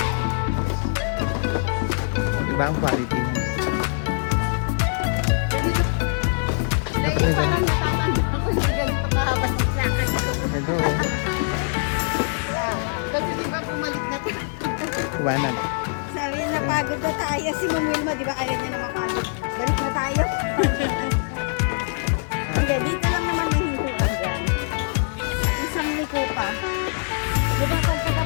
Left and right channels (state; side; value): silent; right; 62 dB below the other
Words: Iba ang quality niya. Dahil parang natatanda ko hindi ganito kahaba sa akin. Ito. Kasi di ba bumalik na to? Iwanag. Sabi na pagod na tayo. Si Ma'am Wilma, di ba ayaw niya na mapagod? Balik na tayo. Hindi, dito lang naman nahintuan dyan. Isang liko pa. Di ba